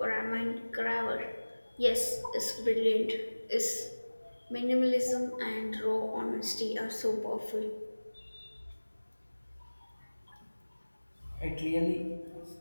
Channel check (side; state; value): both; inverted; correlation -1.00